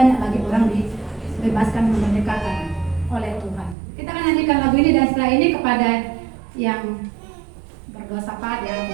lagi orang dibebaskan, memerdekakan oleh Tuhan. Kita akan nyanyikan lagu ini, dan setelah ini kepada yang berdosa pada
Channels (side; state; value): left; drops out; at 3.8 s